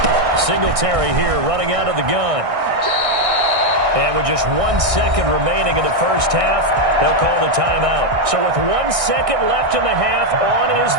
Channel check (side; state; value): left; late; 1.6 ms